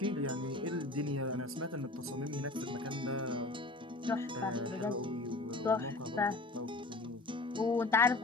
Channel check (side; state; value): right; quieter; 3.0 dB